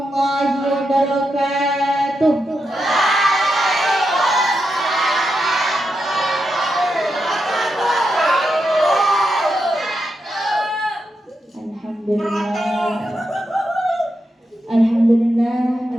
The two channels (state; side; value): normal; both; correlation 0.86